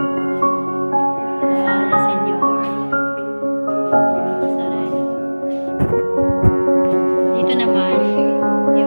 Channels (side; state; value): both; inverted; correlation -1.00